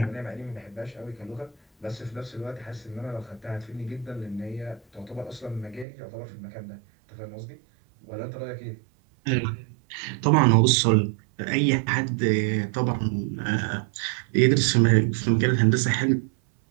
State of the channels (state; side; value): drops out; left; at 5.9 s